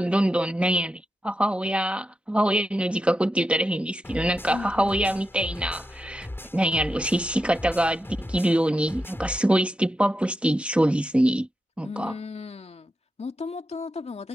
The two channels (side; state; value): both; normal; correlation 0.88